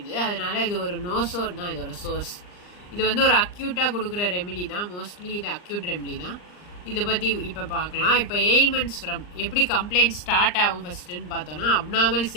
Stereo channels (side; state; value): right; late; 39 ms